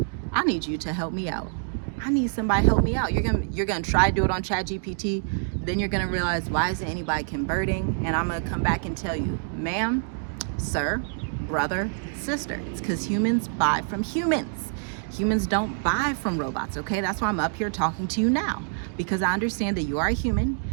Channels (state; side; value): silent; left; digital silence